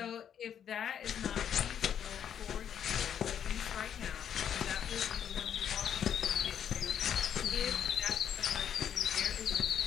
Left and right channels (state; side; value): quieter; right; 9.0 dB